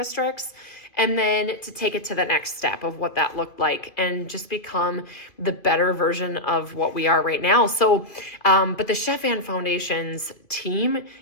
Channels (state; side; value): late; right; 2.6 ms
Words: And then to take it to the next step of what that looked like and just become the better version of what we are right now. So, but the Chef Ann Foundation's team